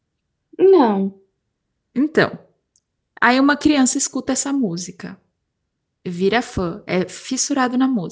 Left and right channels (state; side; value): identical; both; correlation 1.00